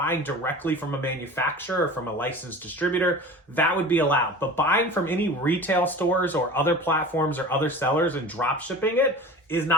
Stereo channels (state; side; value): normal; both; correlation 0.37